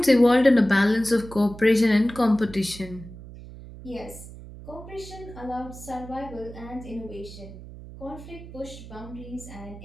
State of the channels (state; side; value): noise; right; hum, 15 dB below the sound